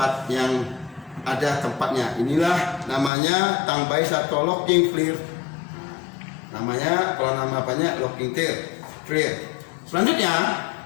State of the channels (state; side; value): drops out; right; at 3.1 s